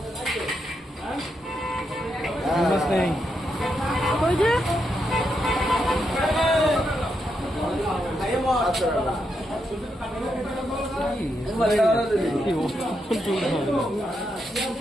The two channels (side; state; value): both; normal; correlation 0.82